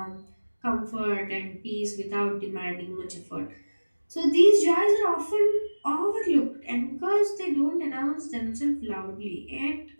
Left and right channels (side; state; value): both; inverted; correlation -1.00